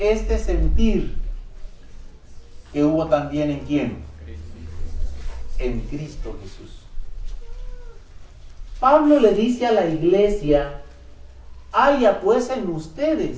sentir que hubo también en ¿quién? En Cristo Jesús. Pablo le dice a la iglesia haya pues en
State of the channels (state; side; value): identical; both; correlation 1.00